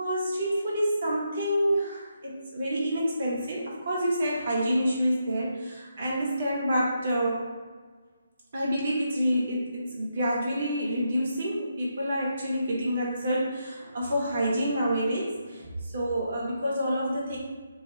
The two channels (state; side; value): inverted; both; correlation -0.81